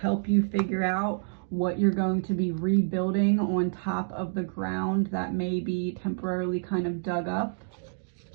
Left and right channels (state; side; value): silent; left; digital silence